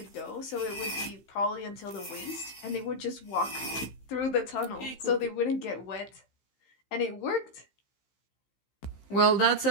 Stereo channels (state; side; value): late; right; 15 ms